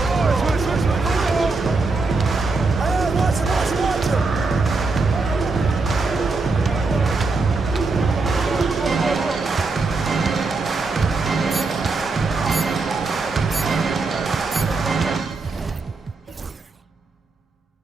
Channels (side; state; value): left; quieter; 3.9 dB